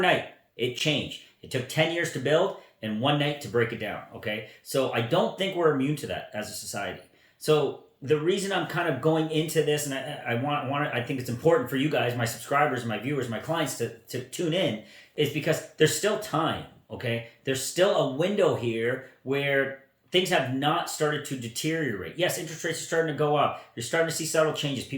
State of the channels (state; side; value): identical; both; correlation 1.00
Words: it changed. It took 10 years to build and one night to break it down. Okay, so I don't think we're immune to that as a society. So the reason I'm kind of going into this, and I think it's important for you guys, my subscribers, my viewers, my clients to tune in, is because there's still time. Okay, there's still a window here where things have not started to deteriorate. Yes, interest rates are starting to go up. You're starting to see subtle changes.